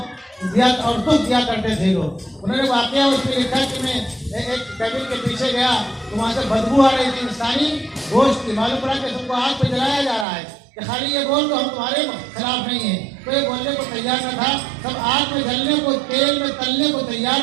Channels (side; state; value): left; drops out; at 10.2 s